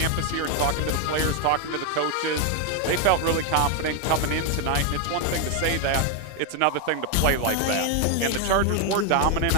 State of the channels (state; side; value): different; both; correlation 0.01